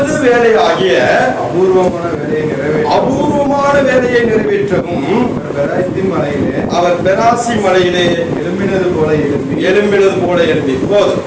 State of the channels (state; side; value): identical; both; correlation 1.00